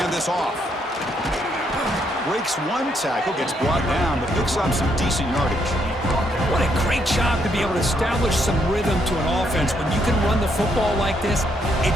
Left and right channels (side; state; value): both; normal; correlation 0.74